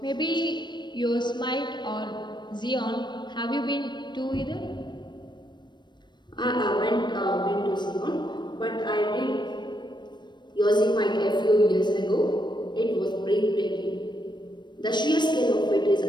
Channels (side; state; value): right; late; 0.22 ms